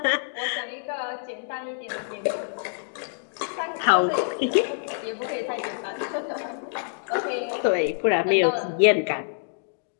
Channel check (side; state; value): right; silent; digital silence